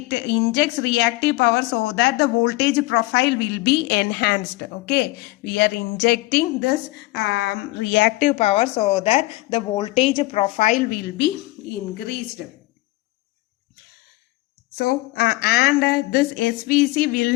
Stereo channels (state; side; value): quieter; right; 20.3 dB